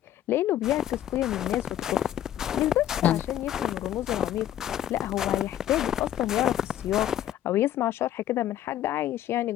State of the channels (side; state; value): right; quieter; 11.8 dB